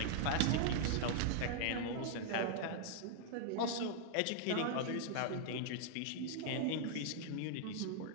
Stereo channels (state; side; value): different; both; correlation -0.01